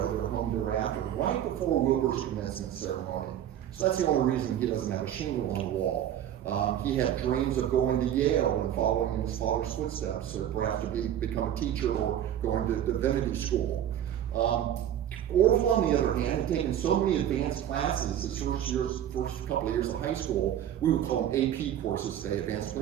They were home thereafter, right before Wilbur's commencement ceremony. So that's the only reason he doesn't have a shingle on the wall. He had dreams of going to Yale and following in his father's footsteps, perhaps to become a teacher or going to divinity school. Orville, on the other hand, had taken so many advanced classes his first couple of years of high school. We would call them AP courses today, advanced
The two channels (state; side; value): quieter; left; 10.7 dB